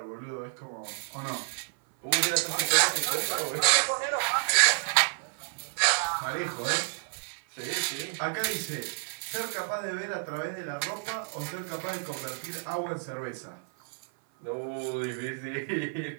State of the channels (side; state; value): left; silent; 58 dB below the other